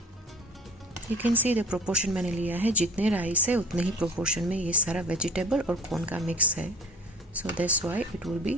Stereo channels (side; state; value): both; normal; correlation 0.44